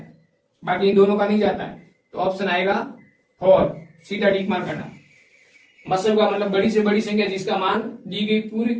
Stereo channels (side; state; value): both; identical; correlation 1.00